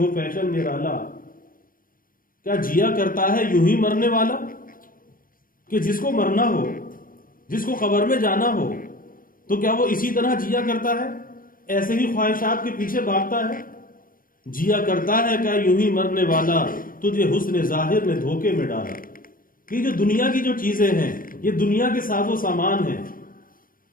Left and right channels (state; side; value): late; right; 0.41 ms